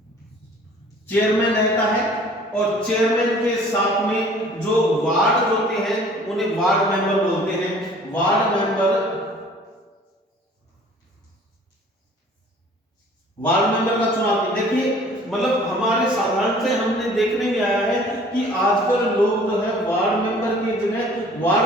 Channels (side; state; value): both; normal; correlation 0.51